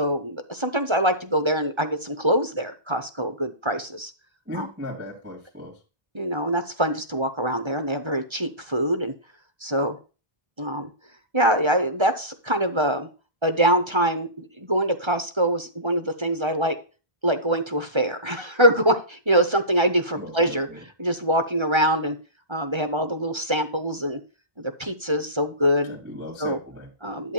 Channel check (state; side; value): late; left; 1.3 ms